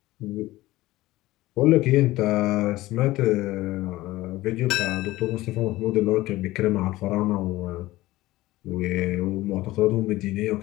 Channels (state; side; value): quieter; right; 17.6 dB